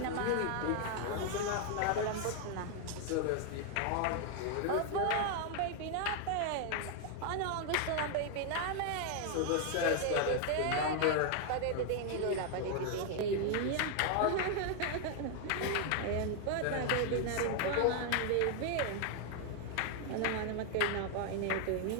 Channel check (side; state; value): both; different; correlation 0.00